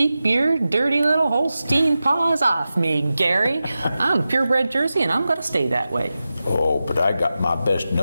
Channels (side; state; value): both; inverted; correlation -0.93